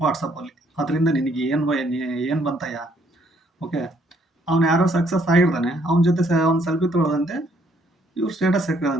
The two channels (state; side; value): normal; both; correlation 0.67